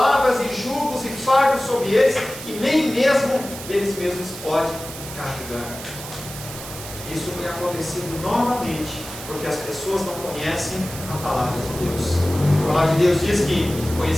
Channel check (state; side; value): noise; right; hiss, 12 dB below the sound